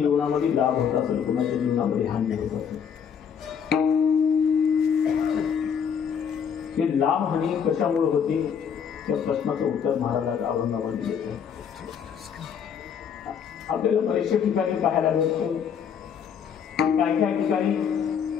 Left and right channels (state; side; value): quieter; right; 7.5 dB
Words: लाभ होत असेल, कुणाच्या जीवनामध्ये हानी होत असेल. हे लाभ हानी कशामुळे होते त्या प्रश्नाचं उत्तर महाराज अभंगामध्ये देतात. आपल्याला बरेचशा ठिकाणी पाहायला मिळतो, काही काही ठिकाणी